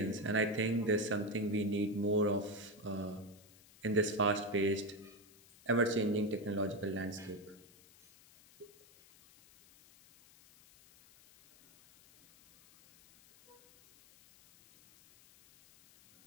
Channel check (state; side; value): noise; left; hiss, 25 dB below the sound